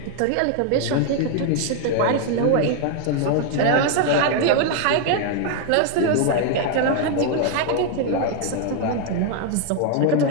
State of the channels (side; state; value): both; different; correlation 0.00